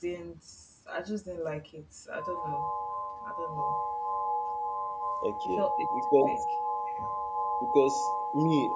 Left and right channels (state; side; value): identical; both; correlation 1.00